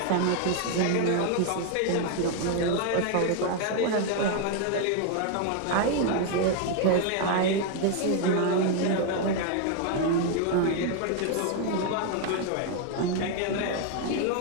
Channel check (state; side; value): different; both; correlation 0.01